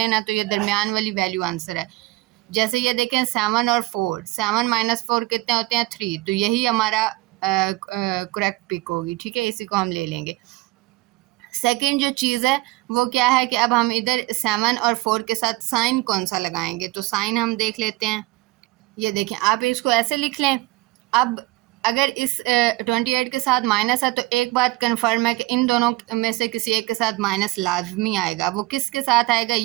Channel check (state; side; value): quieter; left; 20.3 dB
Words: ना, तो ये दरमियान वाली वैल्यू आंसर है। जैसे ये देखें 7 और 4, 7 - 4 कितने होते हैं, 3, तो यही हमारा करेक्ट पिक होगी, ठीक है, इसी को हम ले लेंगे। सेकंड जो चीज़ है वो क्या है कि अब हम इधर 7 और 4 के साथ साइन कौन सा लगाएंगे, तो साइन हम देख लेते हैं। ये देखें, आप इसको ऐसे लिख लें। अब अगर इस 28 के साथ माइनस है, तो एक बात कंफर्म है कि इन दोनों में से किसी एक के साथ माइनस लाजमी आएगा। वो किसके साथ आएगा